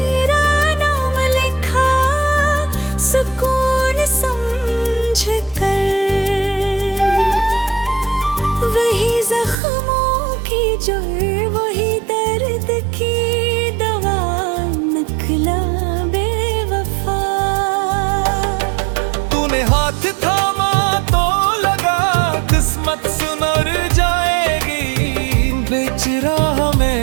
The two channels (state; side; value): drops out; left; at 9.6 s